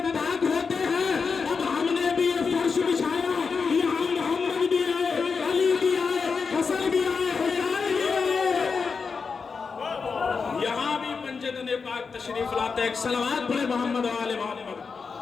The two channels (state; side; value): quieter; right; 5.2 dB